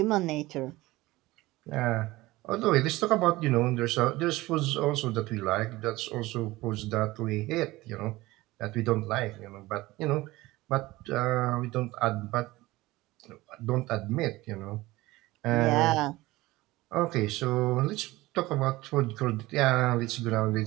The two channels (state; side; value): quieter; left; 19.2 dB